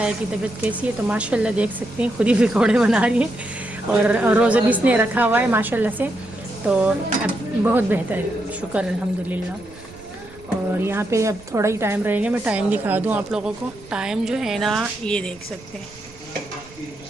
की तबीयत कैसी है, तो माशाल्लाह देख सकते हैं खुद ही पकोड़े बना रही है। और रोज़ा भी इसने रखा हुआ है माशाल्लाह से, तो अब बहुत बेहतर है, शुक्र अल्हम्दुलिल्लाह। और यहाँ पे अब थोड़ा ही टाइम रहेगा, मैं टाइम दिखा दूँ आप लोगों को। टाइम जो है ना ये देख सकते हैं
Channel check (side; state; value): right; noise; rumble, 23 dB below the sound